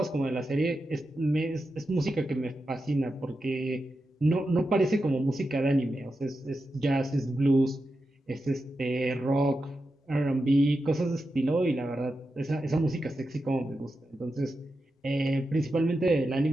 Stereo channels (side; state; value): both; normal; correlation 0.89